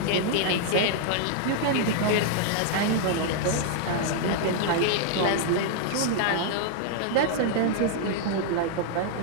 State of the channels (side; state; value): both; different; correlation -0.01